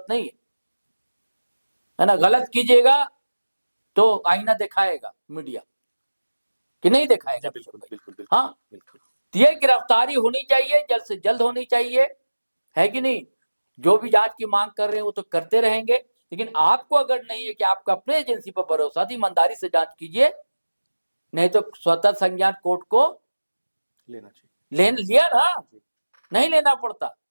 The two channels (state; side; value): inverted; both; correlation -1.00